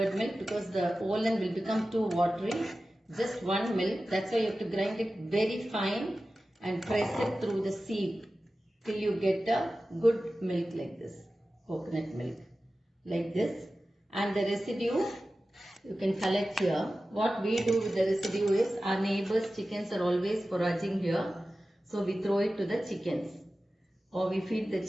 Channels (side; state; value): both; normal; correlation 0.95